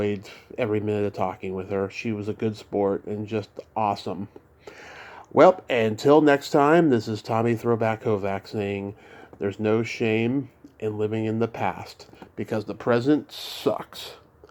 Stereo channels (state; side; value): identical; both; correlation 1.00